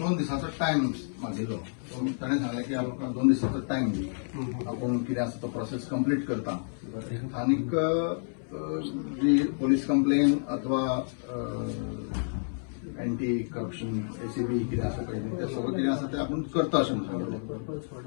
दिसांचो टायम मागिल्लो ताणें सांगलें की आमकां 2 दिसांचो टायम दी आपूण कितें आसा तो प्रोसेस कंप्लीट करता आनीक जी पोलीस कंप्लेन अथवा एंटी करप्शन एसीबी कितें आसा पळय तें सगळें कितें आसा तें आपूण करता अशें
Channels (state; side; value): silent; right; 58 dB below the other